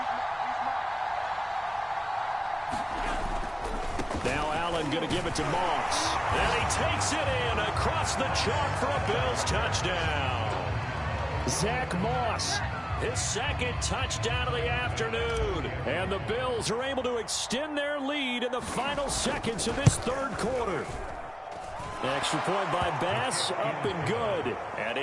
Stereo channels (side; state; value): both; identical; correlation 1.00